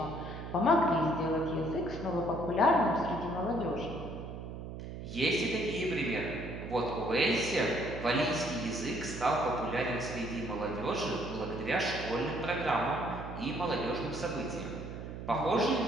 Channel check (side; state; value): right; noise; hum, 9 dB below the sound